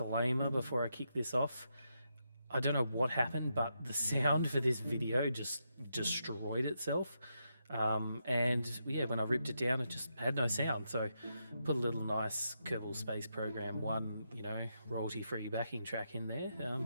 before I kick this off. I don't know what happened, but the sound for this video just destroyed itself. And yeah, when I ripped it down, it just had no sound. So put a little nice Kerbal Space Program 1, royalty-free backing track in there,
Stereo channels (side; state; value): both; inverted; correlation -0.82